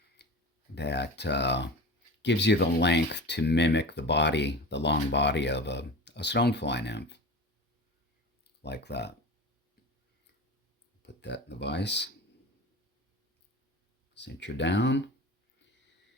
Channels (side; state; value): both; normal; correlation 0.33